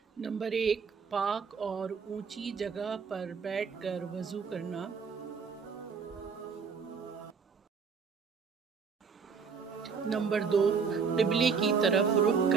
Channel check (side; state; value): left; quieter; 5.8 dB